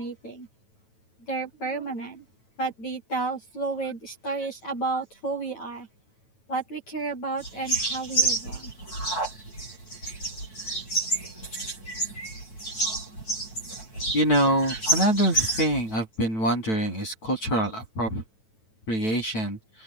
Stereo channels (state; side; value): late; right; 9.2 ms